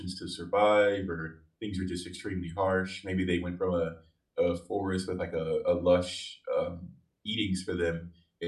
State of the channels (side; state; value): both; identical; correlation 1.00